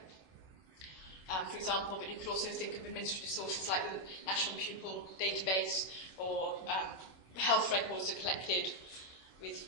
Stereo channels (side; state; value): right; late; 26 ms